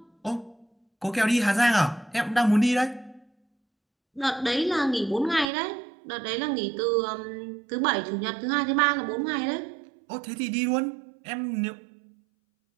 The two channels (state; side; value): drops out; left; at 5.5 s